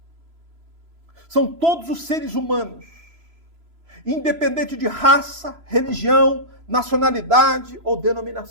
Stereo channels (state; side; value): late; left; 3.0 ms